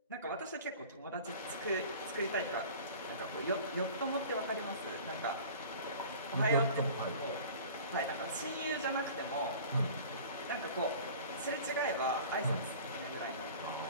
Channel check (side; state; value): both; inverted; correlation -0.42